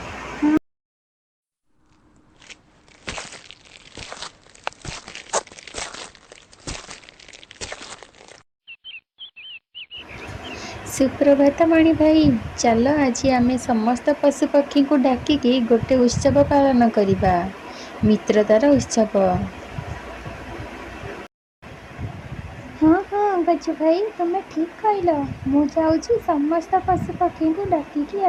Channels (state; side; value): identical; both; correlation 1.00